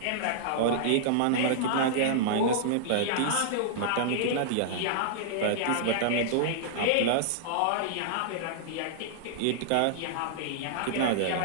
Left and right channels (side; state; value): both; different; correlation -0.01